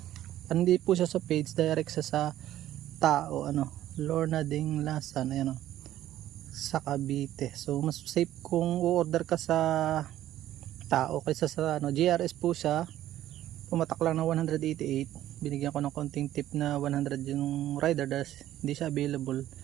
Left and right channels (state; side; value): quieter; left; 13.2 dB